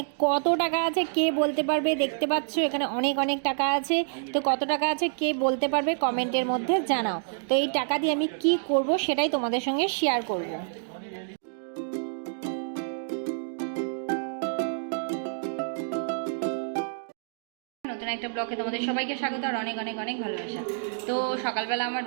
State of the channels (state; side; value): silent; left; digital silence